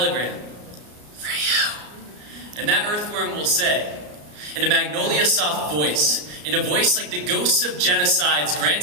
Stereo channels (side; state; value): left; late; 34 ms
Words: for you. And that earthworm will say, in a magnolia soft voice, in a voice like the ghosts of genocides